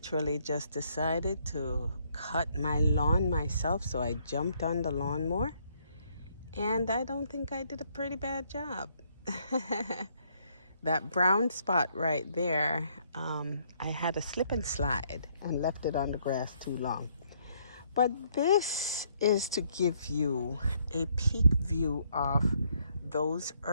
just decided to cut my lawn myself, so I jumped on the lawnmower, and I don't think I did a pretty bad job. That brown spot right there, I had a slip and slide and left it on the grass too long. But this is to give you a peek view of those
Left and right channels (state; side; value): inverted; both; correlation -0.69